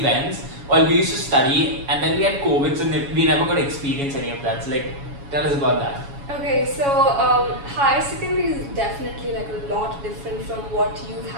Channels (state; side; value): late; left; 7.2 ms